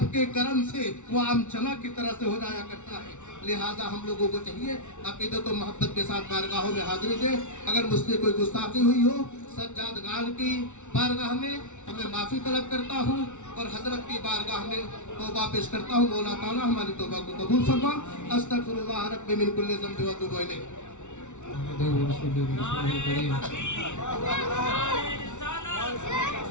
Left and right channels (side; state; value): right; late; 0.84 ms